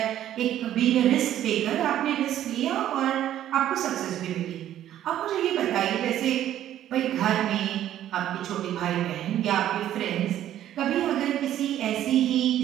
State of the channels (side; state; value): left; quieter; 11.9 dB